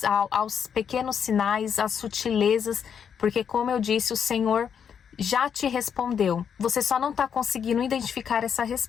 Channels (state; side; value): quieter; right; 7.6 dB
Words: aos pequenos sinais, às sutilezas, porque como eu disse, o Senhor já te respondeu. Você só não está conseguindo identificar essa